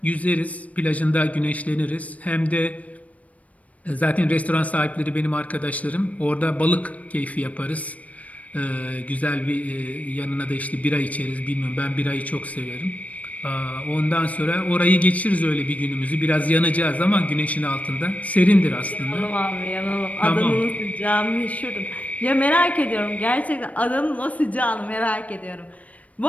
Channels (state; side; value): late; right; 0.068 ms